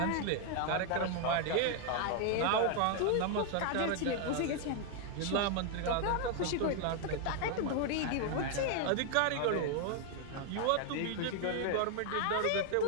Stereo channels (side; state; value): both; different; correlation 0.00